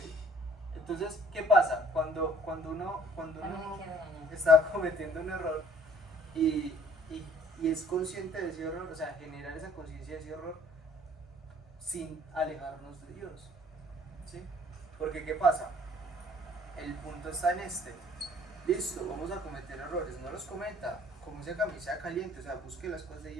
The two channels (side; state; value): both; normal; correlation 0.56